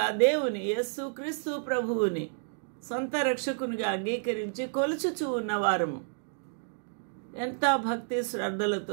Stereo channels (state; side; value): silent; left; digital silence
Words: దేవుని యేసుక్రీస్తు ప్రభువుని సొంత రక్షకునిగా అంగీకరించి కొలుచుచూ ఉన్నవారము ఎంత భక్తి